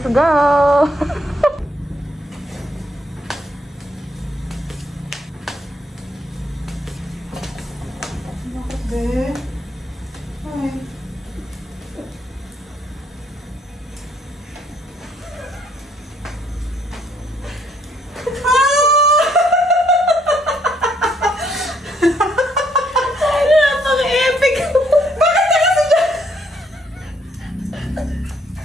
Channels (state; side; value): normal; both; correlation 0.68